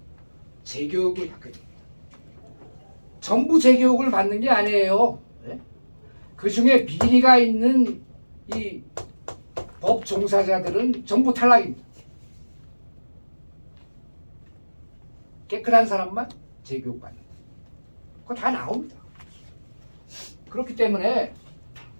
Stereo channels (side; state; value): both; inverted; correlation -1.00